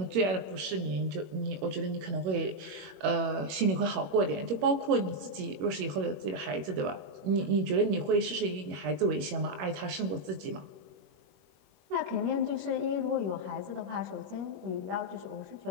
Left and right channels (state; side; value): late; left; 21 ms